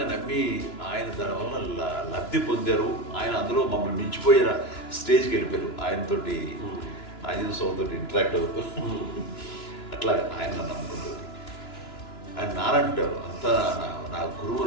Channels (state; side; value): late; right; 2.9 ms